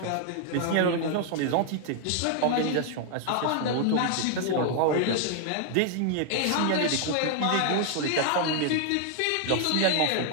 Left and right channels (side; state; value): both; different; correlation 0.00